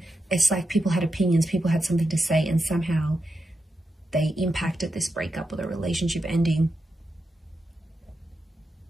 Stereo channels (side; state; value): both; normal; correlation 0.87